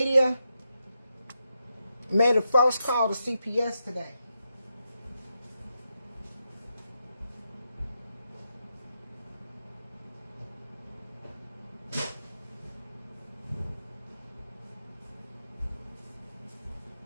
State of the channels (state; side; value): inverted; both; correlation -0.85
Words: made a false call to CPS today.